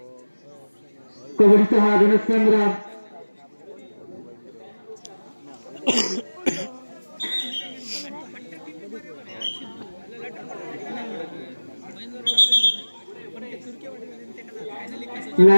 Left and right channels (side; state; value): both; inverted; correlation -1.00